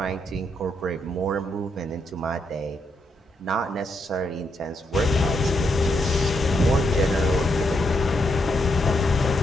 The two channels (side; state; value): both; normal; correlation 0.79